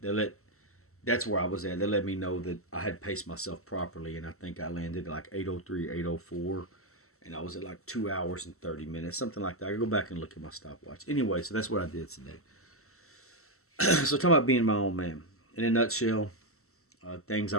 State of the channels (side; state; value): right; late; 0.63 ms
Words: let, that's where I was at. They let me know that I had paced myself properly, and I think I landed like 8:03, 8:04, and I was at like 2 hours and 30 minutes, something like that. I could go back and look at my stopwatch. Anyway, so that's what I did today. So talking about being my own man. In a nutshell, things I